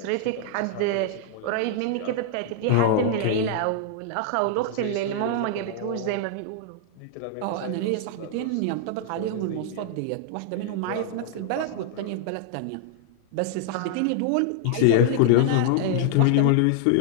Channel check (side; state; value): both; different; correlation -0.01